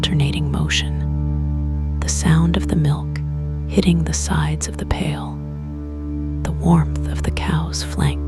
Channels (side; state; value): both; identical; correlation 1.00